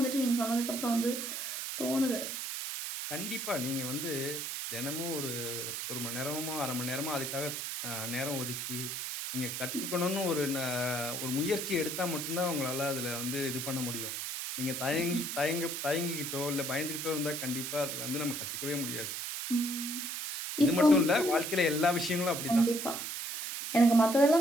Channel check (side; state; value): right; noise; hiss, 4 dB below the sound